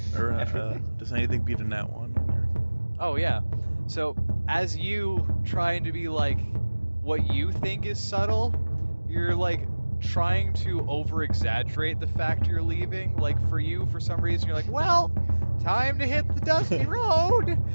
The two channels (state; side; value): inverted; both; correlation -1.00